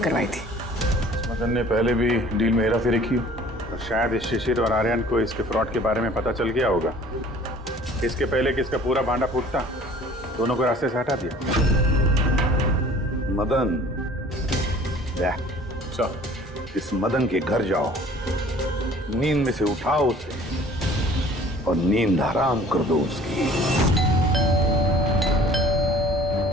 थी। मदन ने पहले भी डील में हेराफेरी की, और शायद इस शिशिर और आर्यन को इसके फ्रॉड के बारे में पता चल गया होगा, इसके पहले कि इसका पूरा भांडा फूटता, दोनों को रास्ते से हटा दिया। मदन, इस मदन के घर जाओ, नींद में से उठाओ उसे और नींद हराम कर दो उसकी।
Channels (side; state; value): both; normal; correlation 0.50